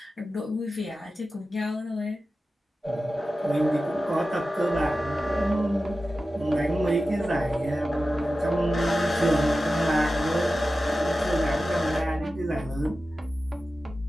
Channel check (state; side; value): normal; both; correlation 0.94